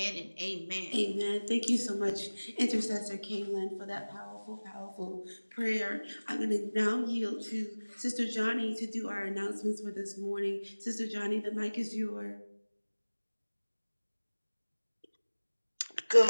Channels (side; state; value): both; inverted; correlation -1.00